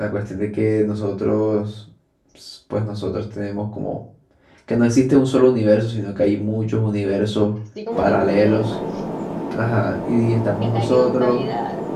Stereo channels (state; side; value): identical; both; correlation 1.00